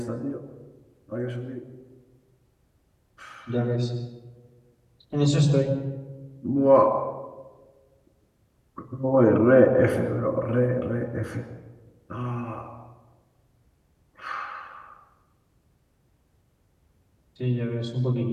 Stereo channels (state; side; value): identical; both; correlation 1.00